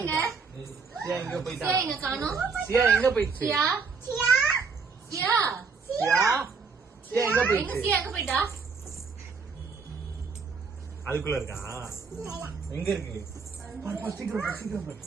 எங்க? சியா எங்க போயிட்டா? சியா எங்க காணோம்? சியா எங்க போயிடுச்சு? சியா? சியா சியா? சியா சியா எங்க எங்க போயிடுச்சு? சியா எங்க போயிட்டா? அதுக்குள்ள இருக்கா? எங்க இருக்கு? சீக்கிரம் சீக்கிரம் பாரு.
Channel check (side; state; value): left; quieter; 5.0 dB